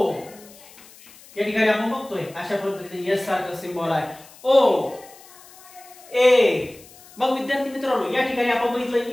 या ठिकाणी आपण बघतोय अशा पद्धतीने एस सारखं सिंबॉल आहे ओ ए. मग विद्यार्थी मित्रांनो या ठिकाणी आपण बघितलं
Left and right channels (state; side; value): noise; left; hiss, 22 dB below the sound